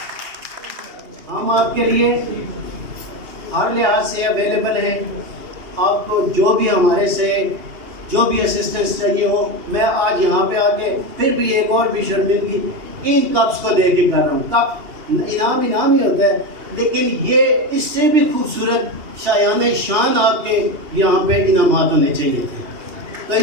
ہم آپ کے لیے ہر لحاظ سے اویلیبل ہیں، آپ کو جو بھی ہمارے سے جو بھی اسسٹنس چاہیے ہو۔ میں آج یہاں پہ آ کے پھر بھی ایک اور بھی شرمندگی ان کپس کو دے کے کر رہا ہوں۔ کپ انعام ہی ہوتا ہے، لیکن یہ اس سے بھی خوبصورت شایان شان آپ کے یہاں پہ انعامات ہونے چاہیے تھے۔ تو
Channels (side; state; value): left; late; 2.8 ms